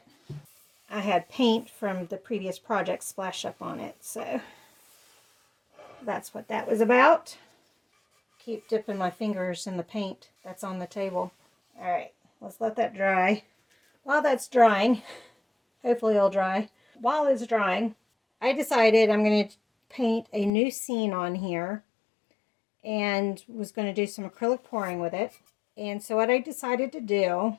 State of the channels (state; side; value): drops out; right; at 20.5 s